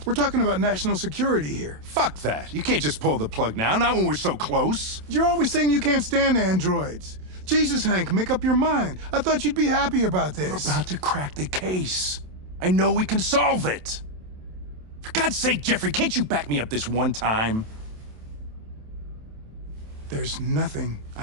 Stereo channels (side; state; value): left; late; 27 ms